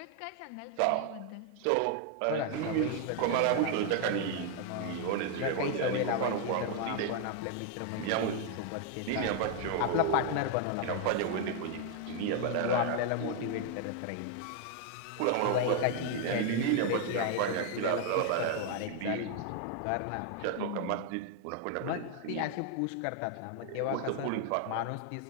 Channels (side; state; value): both; different; correlation 0.00